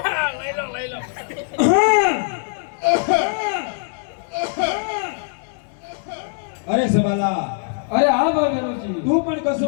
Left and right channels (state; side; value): silent; right; digital silence